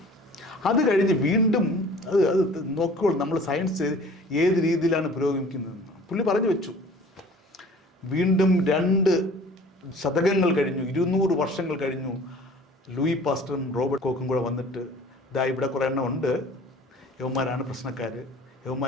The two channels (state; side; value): normal; both; correlation 0.47